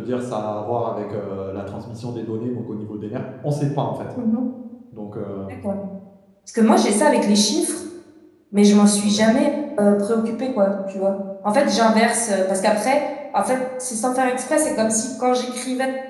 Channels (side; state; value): both; identical; correlation 1.00